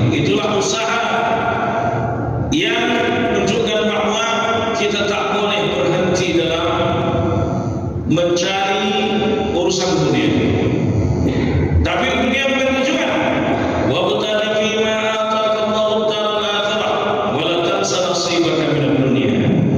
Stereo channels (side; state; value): both; identical; correlation 1.00